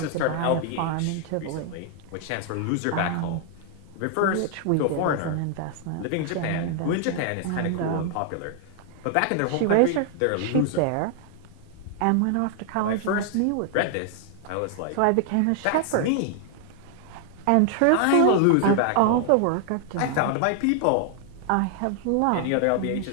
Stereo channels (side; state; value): both; different; correlation 0.00